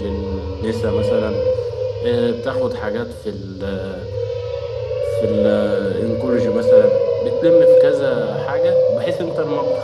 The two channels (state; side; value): identical; both; correlation 1.00